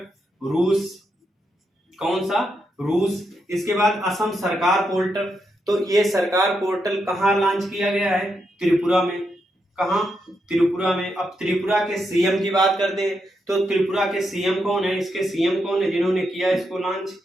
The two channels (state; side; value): normal; both; correlation 0.82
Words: रूस। कौन सा? रूस। इसके बाद असम सरकार पोर्टल, तो ये सरकार पोर्टल कहाँ लॉन्च किया गया है? त्रिपुरा में। कहाँ? त्रिपुरा में। अब त्रिपुरा के सीएम की बात करते हैं, तो त्रिपुरा के सीएम कौन है? इसके सीएम कौन है जिन्होंने किया इसको लॉन्च?